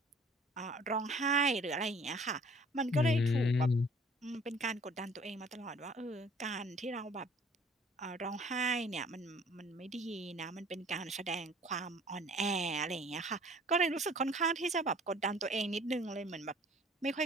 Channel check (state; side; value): normal; both; correlation 0.53